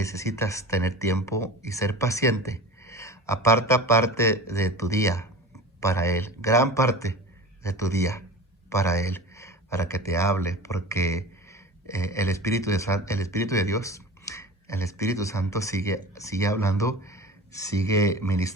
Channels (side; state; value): both; normal; correlation 0.34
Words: tener tiempo y ser paciente. Aparta parte de tu día para Él, gran parte de tu día para Él, para que te hable, porque el Espíritu de Dios, el Espíritu Santo sigue hablando, sigue